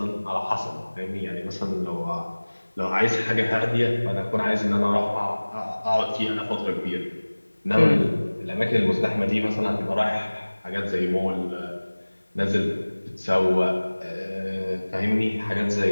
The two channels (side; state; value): both; inverted; correlation -1.00